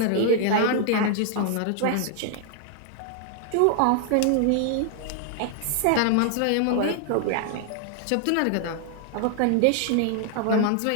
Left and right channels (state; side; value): different; both; correlation 0.00